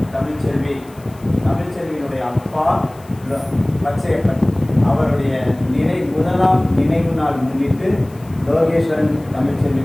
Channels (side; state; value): left; noise; hiss, 27 dB below the sound